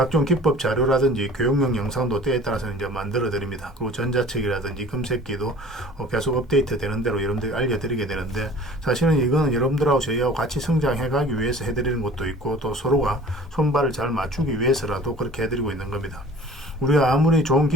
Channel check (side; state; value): both; normal; correlation 0.45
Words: 기법 자료라든지 교육용 영상도 때에 따라서 이제 만들어 드립니다. 그리고 전자책이라든지 금색기도 계속 업데이트 되는 대로 여러분들이 알려드리게 되는데, 사실은 이거는 여러분들하고 저희하고 같이 성장해 가기 위해서 해드리는 것도 있고, 또 서로가 손발을 잘 맞추기 위해서라도 그렇게 해드리고 있는 겁니다. 우리가 아무리 좋은